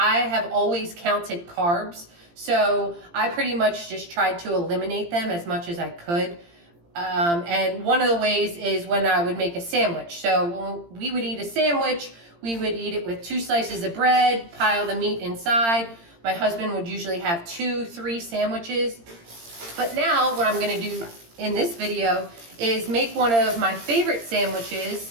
have always counted carbs. So I pretty much just tried to eliminate them as much as I could. And one of the ways is when I would make a sandwich. So when we would eat a sandwich, we would eat it with 2 slices of bread, pile the meat inside. My husband would usually have 2-3 sandwiches. But now what I'm going to do in this video is make one of my favorite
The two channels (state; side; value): late; left; 17 ms